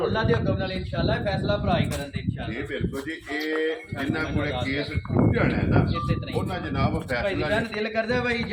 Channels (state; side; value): identical; both; correlation 1.00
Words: ਅੱਲਾ ਦੇ ਹੁਕਮ ਨਾਲ ਇਨਸ਼ਾਅੱਲਾ ਫੈਸਲਾ ਭਰਾ ਹੀ ਕਰਨ ਦੇ ਇਨਸ਼ਾਅੱਲਾ। ਜੀ ਬਿਲਕੁਲ ਜੀ। ਇਹ ਜਿੰਨਾ ਕੋਲੇ ਕੇਸ ਟੁੱਟ ਜਾਣਾ ਹੈ ਨਾ ਇਸੇ ਤਰ੍ਹਾਂ ਹੀ। ਉਹਨਾਂ ਜਨਾਬ ਭਾਈ ਦੀ ਫੈਸਲਾ ਸ਼ਾਨ ਦਿਲ ਕਰਦਾ ਭਾਈ